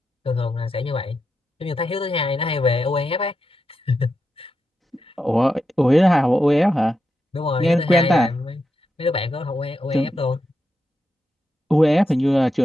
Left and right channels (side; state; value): both; normal; correlation 0.86